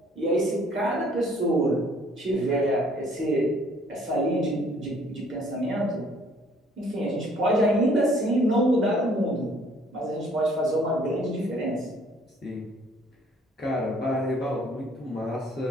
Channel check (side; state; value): both; normal; correlation 0.59